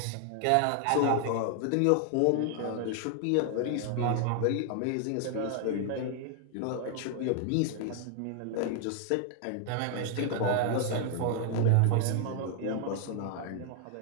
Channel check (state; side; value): different; both; correlation 0.00